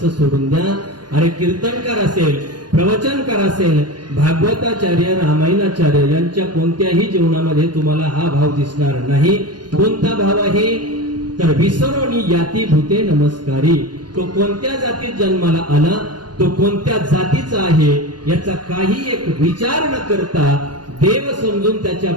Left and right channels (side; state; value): left; late; 0.70 ms